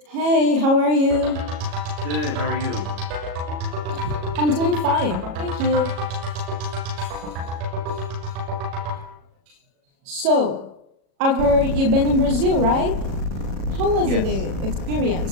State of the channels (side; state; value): left; late; 37 ms